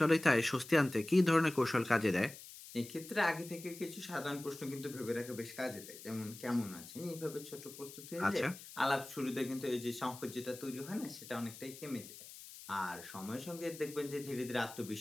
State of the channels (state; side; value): noise; left; hiss, 15 dB below the sound